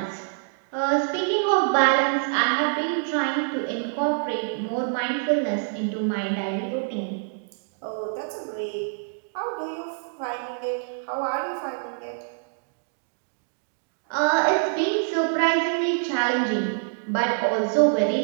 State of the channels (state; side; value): silent; left; digital silence